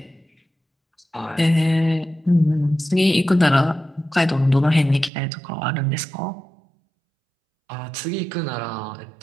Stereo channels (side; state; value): left; drops out; at 5.1 s